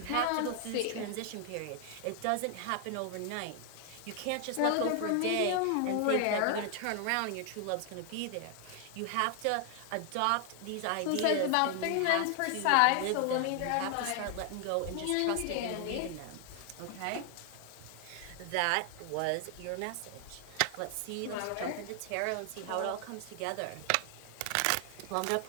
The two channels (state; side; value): different; both; correlation 0.00